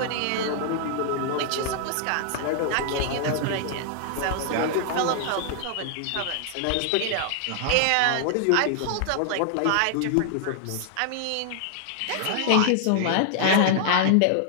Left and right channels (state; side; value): different; both; correlation -0.01